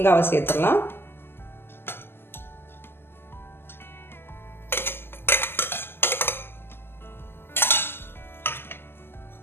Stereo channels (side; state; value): right; late; 0.11 ms